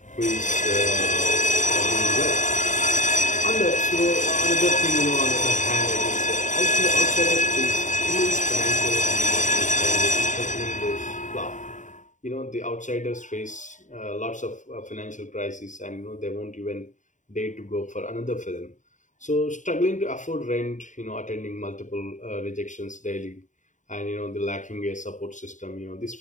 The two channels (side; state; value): right; late; 0.36 ms